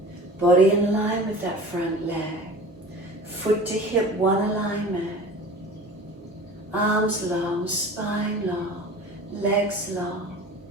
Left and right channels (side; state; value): both; normal; correlation 0.40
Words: Body in line with that front leg. Foot to hip, one alignment. Arms long, spine long, legs long.